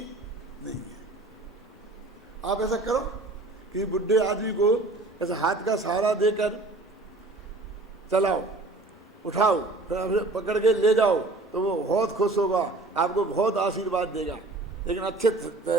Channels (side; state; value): left; quieter; 3.1 dB